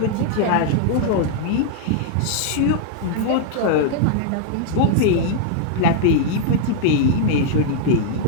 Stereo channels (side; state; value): both; different; correlation -0.01